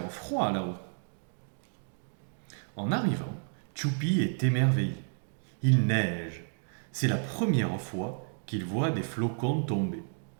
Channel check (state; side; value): silent; left; 57 dB below the other